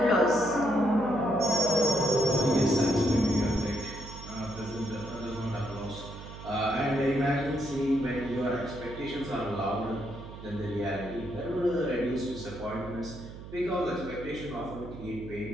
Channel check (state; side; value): noise; right; hum, 13 dB below the sound